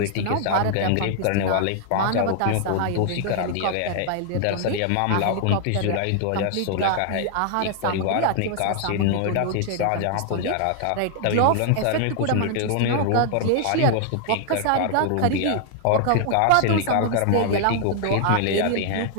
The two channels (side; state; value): both; different; correlation 0.00